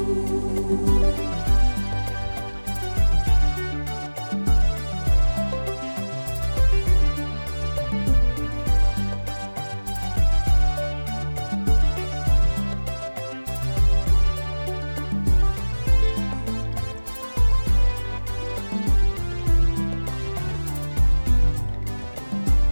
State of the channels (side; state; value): both; inverted; correlation -1.00